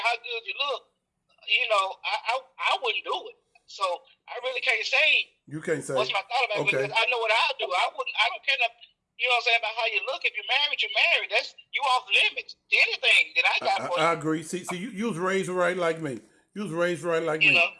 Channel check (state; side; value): identical; both; correlation 1.00